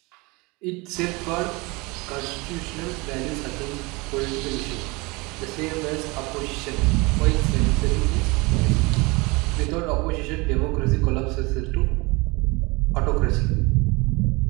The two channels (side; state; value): left; quieter; 25.4 dB